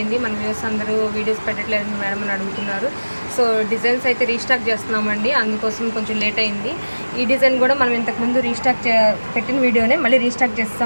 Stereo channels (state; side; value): inverted; both; correlation -1.00